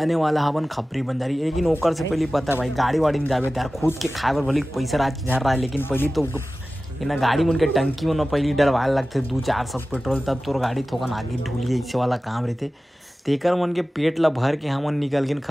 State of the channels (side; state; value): both; normal; correlation 0.96